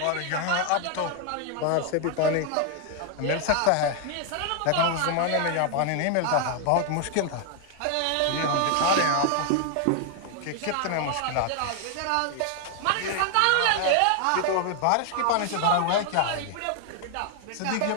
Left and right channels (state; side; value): different; both; correlation 0.00